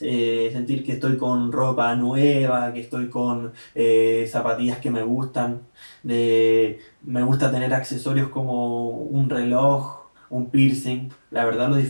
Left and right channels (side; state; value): both; inverted; correlation -1.00